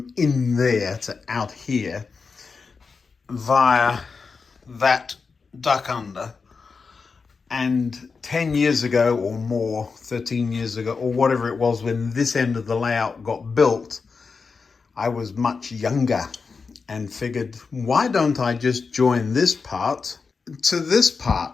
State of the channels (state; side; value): quieter; right; 4.9 dB